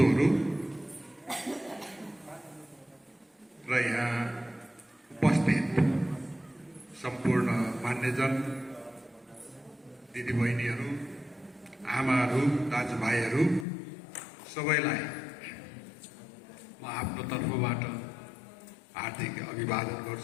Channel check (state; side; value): drops out; right; at 13.7 s